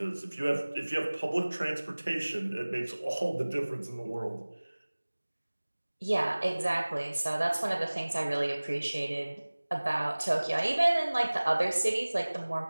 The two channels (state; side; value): inverted; both; correlation -1.00